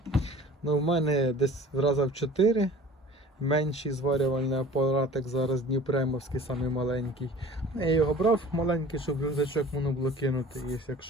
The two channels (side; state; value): both; normal; correlation 0.44